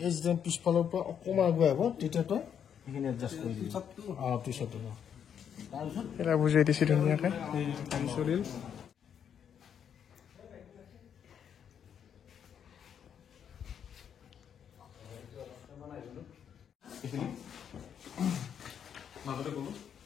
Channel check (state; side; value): quieter; right; 8.3 dB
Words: যে পিছফালৰ পৰা অকণমান আগুৱাই আহিব তেতিয়া তই সেইখিনি এডজাষ্ট কৰি দিবি পিছতো এটা বুজাই দিছে ধুনীয়াকৈ চলিল